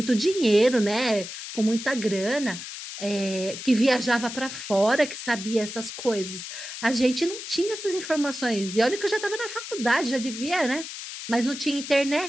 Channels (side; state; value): left; noise; hiss, 9 dB below the sound